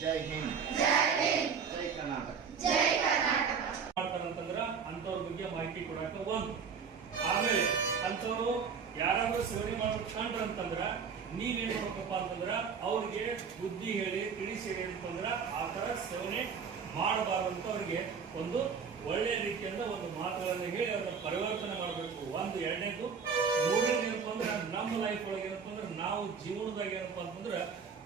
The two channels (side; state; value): left; quieter; 6.2 dB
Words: ಜೈ ಹಿಂದ್, ಜೈ ಕರ್ನಾಟಕ. ಮಾಡ್ತಾರಂತಂದ್ರ ಅಂತವ್ರ ಬಗ್ಗೆ ಮಾಹಿತಿ ಕೊಡಾಕ ಒಂದು. ಆಮೇಲೆ ಅಂತವ್ರು ಯಾರಾದ್ರೂ ಸೇವನೆ ಮಾಡ್ಬೇಕು ಕಂಡ್ರಂತಂದ್ರ ನೀವೇನ್ ಮಾಡ್ಬೇಕಪ್ಪ ಅಂತಂದ್ರ ಅವ್ರಿಗೆ ಬುದ್ಧಿ ಹೇಳಿ ತಿಳಿಸಿ ಅಂತಂದ್ರ ಆ ತರ ಸೇವನೆ ಮಾಡಬಾರ್ದಂತ ಅವ್ರಿಗೆ ಒಂದು ಒಳ್ಳೆ ರೀತಿಯಿಂದ ಒಂದು ಮಾತುಗಳನ್ನ ಹೇಳಿ ಅದನ್ನ ಪರಿವರ್ತನೆ ಮಾಡಬೇಕು. ಒಂದು. ಎರಡನೇದು, ಮೂರನೇದು ಏನಪ್ಪ ಅಂದ್ರೆ ನಮ್ಮ ಲೈಫ್ ಒಳಗೆ ಏನಪ್ಪ ಅಂದ್ರೆ ನಾವು ಜೀವನದಾಗ ಏನಪ್ಪಾ ಅಂತಂದ್ರ